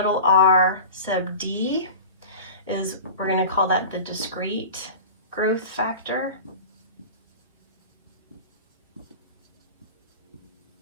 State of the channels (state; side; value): inverted; both; correlation -0.34